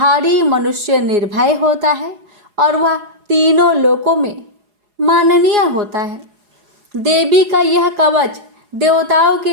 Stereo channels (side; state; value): left; late; 4.8 ms